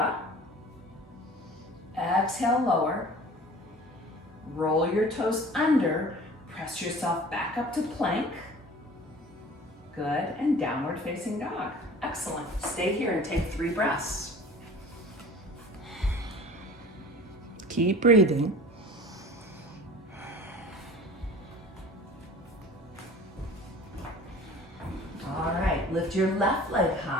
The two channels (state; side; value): normal; both; correlation 0.43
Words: Exhale, lower. Roll your toes under. Press yourself back up to plank. Good, and downward facing dog. Excellent. Stay here and take 3 breaths. Keep breathing. All right, lift your left leg